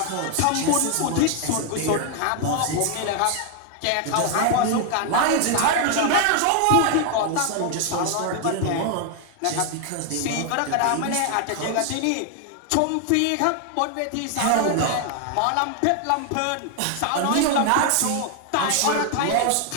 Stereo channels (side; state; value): both; different; correlation 0.01